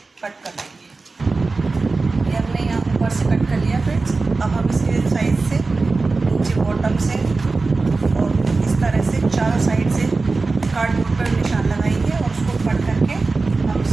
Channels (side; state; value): left; quieter; 3.8 dB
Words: कट कर लेंगे। ये हमने यहाँ ऊपर से कट कर लिया फ्रेंड्स। अब हम इसके साइड से नीचे बॉटम से और इस तरह से चारों साइड से कार्डबोर्ड पर निशान लगाएंगे और उसको कट करके हम